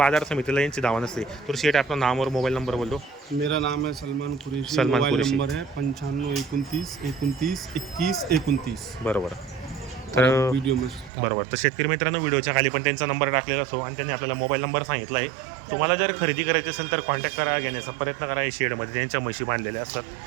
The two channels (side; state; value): left; drops out; at 11.1 s